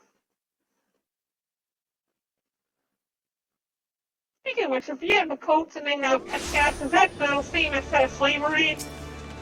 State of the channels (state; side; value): identical; both; correlation 1.00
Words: Speaking of which, if you have the coats and they have pet cats, is that the same as slavery?